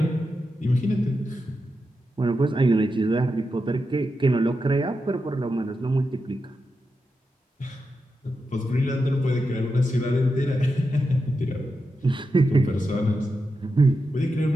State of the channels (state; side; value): normal; both; correlation 0.88